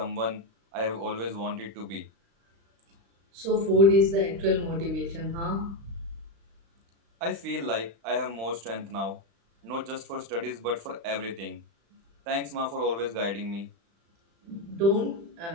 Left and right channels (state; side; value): late; left; 35 ms